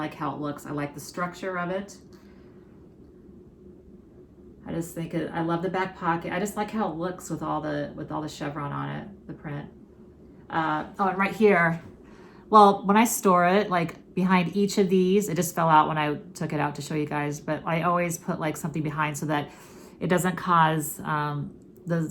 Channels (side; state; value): both; identical; correlation 1.00